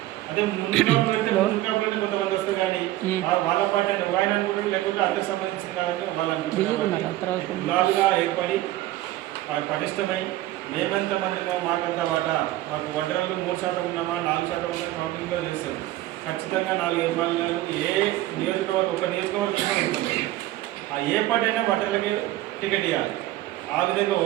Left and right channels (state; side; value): quieter; left; 15.7 dB